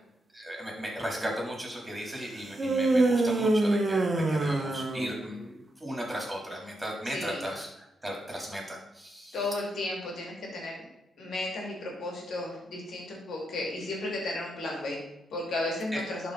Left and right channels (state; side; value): normal; both; correlation 0.83